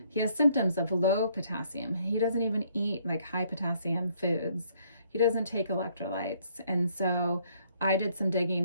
he has symptoms of low potassium. He doesn't even eat high potassium foods. He doesn't take electrolytes. And so I did some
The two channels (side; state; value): both; inverted; correlation -0.67